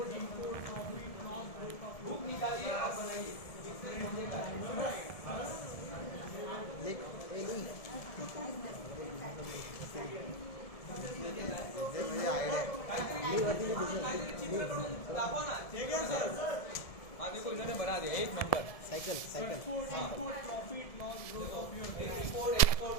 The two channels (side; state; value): right; late; 1.7 ms